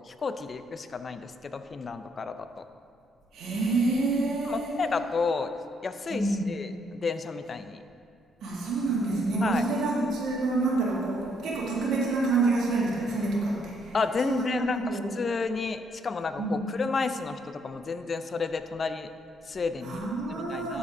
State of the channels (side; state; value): both; normal; correlation 0.71